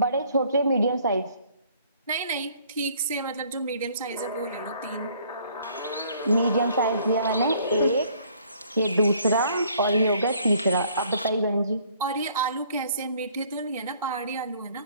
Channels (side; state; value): both; inverted; correlation -0.60